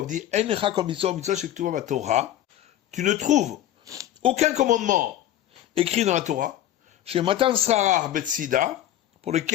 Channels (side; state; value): right; quieter; 12.5 dB